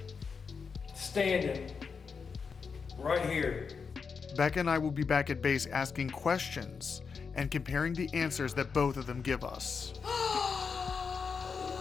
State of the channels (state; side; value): quieter; right; 5.6 dB